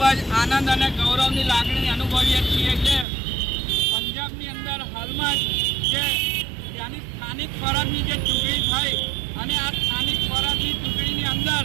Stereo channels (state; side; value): drops out; left; at 3.1 s